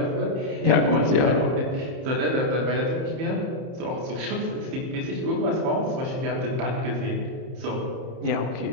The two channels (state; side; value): late; left; 30 ms